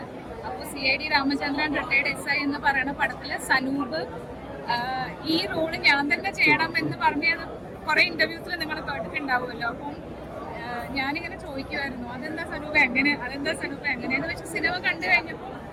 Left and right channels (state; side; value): identical; both; correlation 1.00